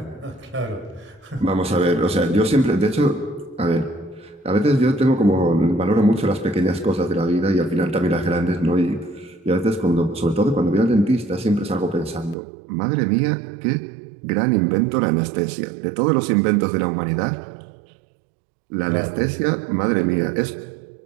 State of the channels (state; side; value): drops out; left; at 12.4 s